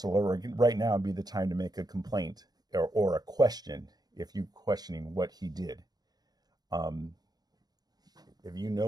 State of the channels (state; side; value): late; left; 0.19 ms